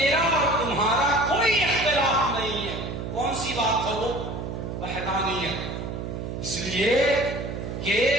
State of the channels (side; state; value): right; noise; hum, 6 dB below the sound